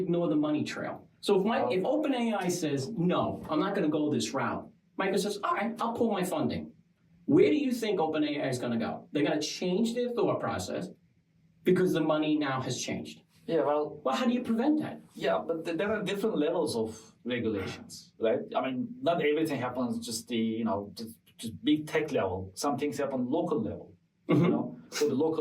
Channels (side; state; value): both; identical; correlation 1.00